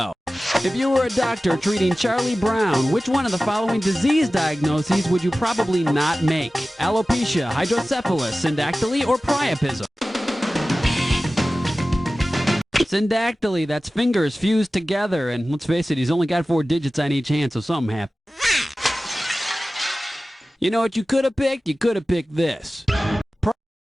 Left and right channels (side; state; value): both; normal; correlation 0.96